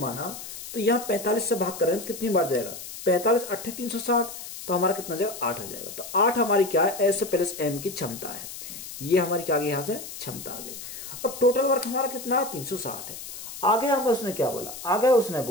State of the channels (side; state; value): left; noise; hiss, 11 dB below the sound